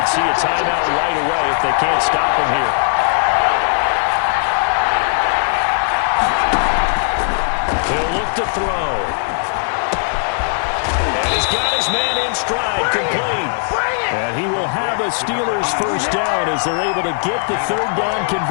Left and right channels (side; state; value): right; silent; digital silence